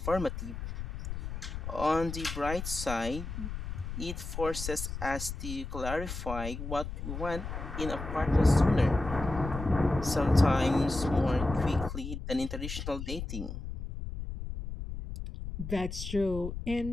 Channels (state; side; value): noise; left; rumble, 6 dB below the sound